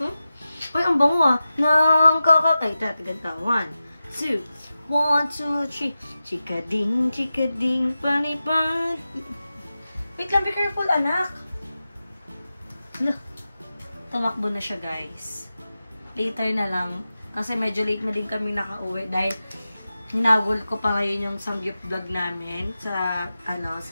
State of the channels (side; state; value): both; inverted; correlation -0.93